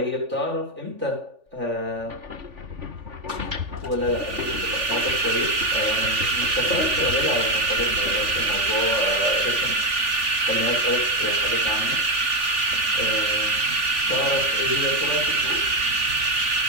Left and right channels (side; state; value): left; late; 3.4 ms